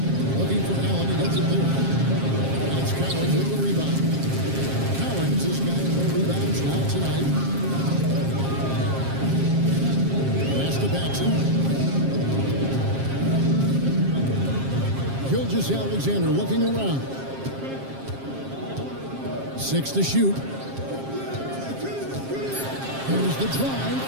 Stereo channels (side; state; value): left; late; 7.5 ms